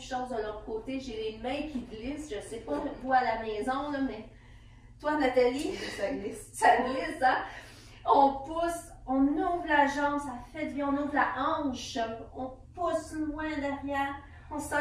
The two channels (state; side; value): identical; both; correlation 1.00